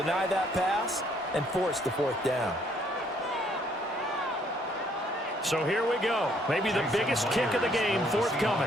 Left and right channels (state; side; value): normal; both; correlation 0.66